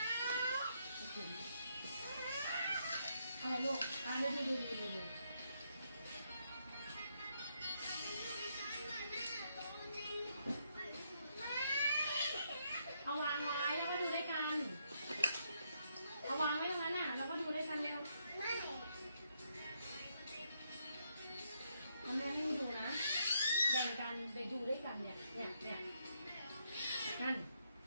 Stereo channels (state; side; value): inverted; both; correlation -0.77